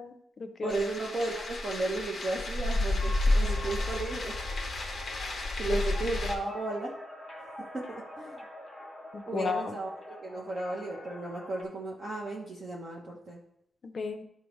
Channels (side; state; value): both; normal; correlation 0.86